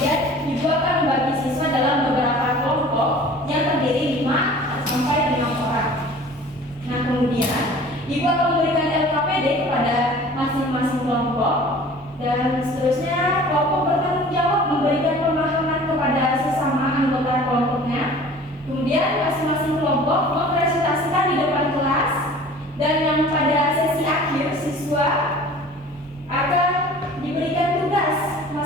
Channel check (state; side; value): normal; both; correlation 0.45